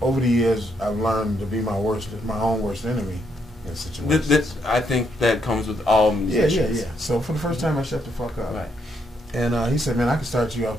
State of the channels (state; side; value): normal; both; correlation 0.75